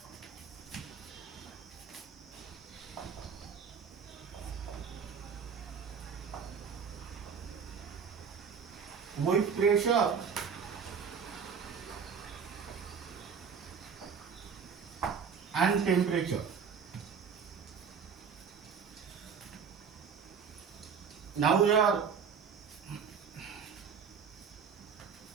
with pressure and temperature. Now we are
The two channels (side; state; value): left; quieter; 6.4 dB